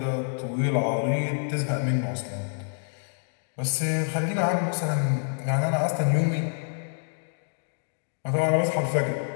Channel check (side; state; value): right; silent; 60 dB below the other